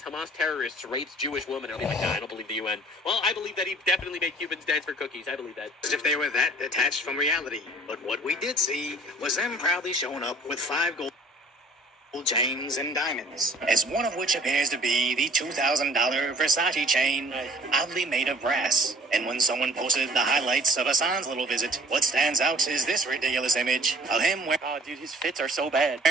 terrorists raped Jewish women. I'll be like, nah, I don't believe the UN. Well, I believe that he definitely made Cubans dance for cookies. I believe that. As if they were that detached from reality. But what we did see was them proudly showing up with 5 gold chains and diamonds, as one of which appears to be the $2,000 Versace chain, oddly made of brass. And when someone posted the highlights of Hassan's little visit, what stands out is this ridiculous image of him wearing... Oh, dude, his fits are so bad.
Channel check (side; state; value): both; normal; correlation 0.52